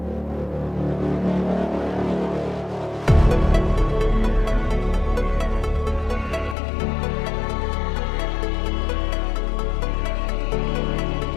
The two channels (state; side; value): drops out; right; at 6.6 s